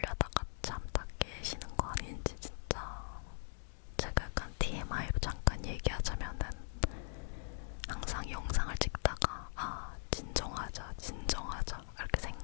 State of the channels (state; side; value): silent; right; digital silence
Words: 잠 다 깨시는 거 아닌지 진짜. 제가 약간 TMI로 잠깐 얘기하자면은 항상 영상을 찍다가 진정하자 이렇게